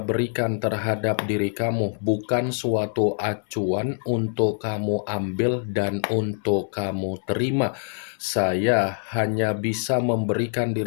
terhadap diri kamu bukan suatu acuan untuk kamu ambil dan untuk kamu terima. Saya hanya bisa memberikan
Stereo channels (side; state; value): right; silent; 62 dB below the other